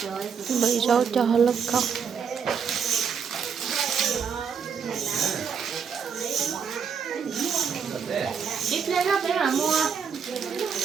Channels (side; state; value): left; quieter; 6.7 dB